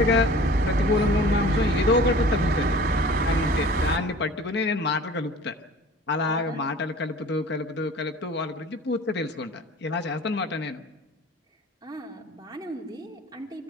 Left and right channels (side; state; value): both; normal; correlation 0.44